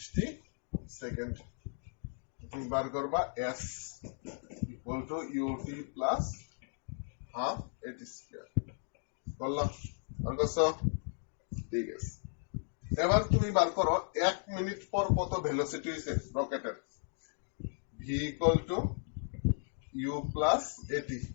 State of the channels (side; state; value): right; silent; 54 dB below the other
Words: সেকেন্ড। তুমি বার করবা s ইকুয়াল টু ut plus half at square, বললাম বার করছো। ঠিক আছে, এবার তুমি বার করো 1 মিনিট পর কত ভেলোসিটি হইছে রকেটের, v equal two u plus at,